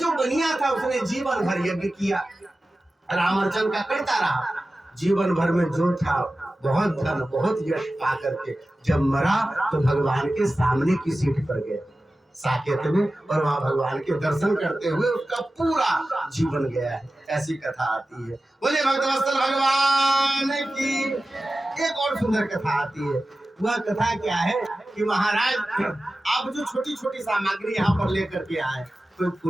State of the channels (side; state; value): both; normal; correlation 0.95